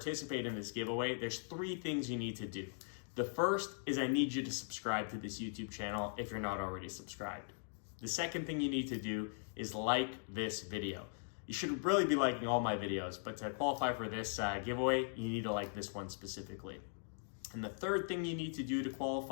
in this giveaway, there's 3 things you need to do. The first is I need you to subscribe to this YouTube channel if you're not already subscribed. The second thing you need to do is like this video. You should really be liking all my videos, but to qualify for this giveaway, you need to like this one specifically. And the third thing you need to do to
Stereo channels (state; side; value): silent; right; digital silence